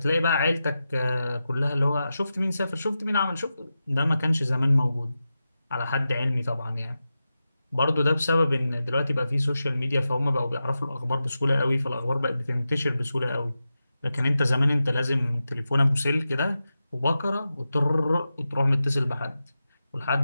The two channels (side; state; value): both; inverted; correlation -0.92